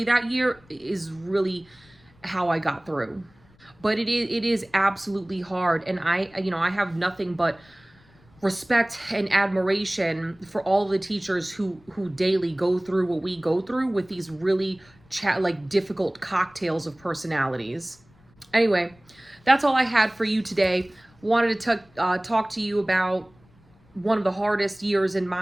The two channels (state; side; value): noise; left; rumble, 29 dB below the sound